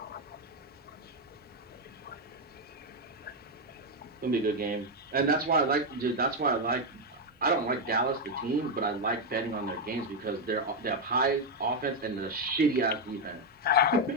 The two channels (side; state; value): both; normal; correlation 0.04